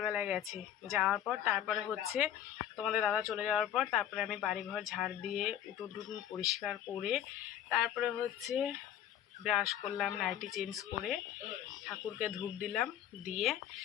গেছে। যাওয়ার পর তারপরে হচ্ছে তোমাদের দাদা চলে যাওয়ার পর তারপরে আমি বাড়িঘর ঝাড় দিয়ে উঠোন টুটুন পরিষ্কার করে তারপরে হচ্ছে ব্রাশ করলাম, নাইটি চেঞ্জ করে ঠাকুরকে ধূপ দিলাম, দিয়ে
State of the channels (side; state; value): right; quieter; 10.7 dB